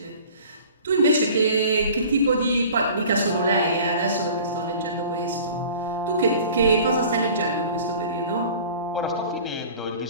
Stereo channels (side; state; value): both; inverted; correlation -0.44